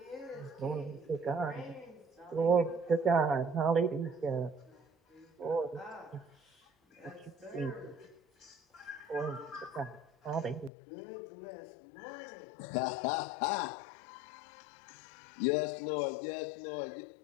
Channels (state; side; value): drops out; right; at 10.7 s